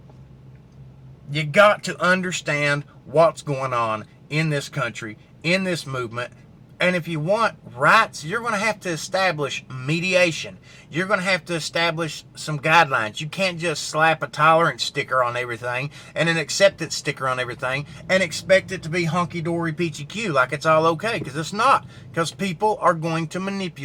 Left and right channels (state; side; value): identical; both; correlation 1.00